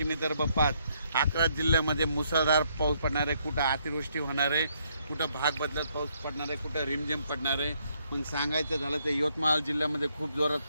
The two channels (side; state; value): both; inverted; correlation -0.72